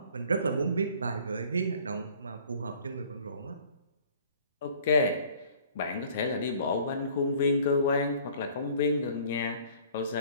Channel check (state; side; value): inverted; both; correlation -0.53